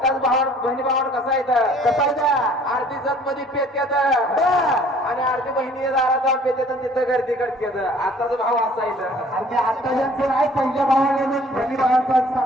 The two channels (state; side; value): normal; both; correlation 0.54